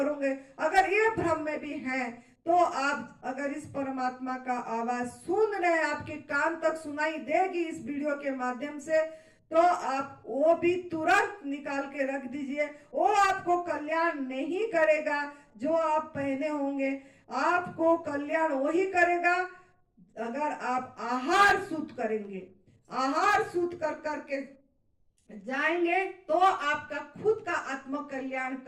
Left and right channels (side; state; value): both; identical; correlation 1.00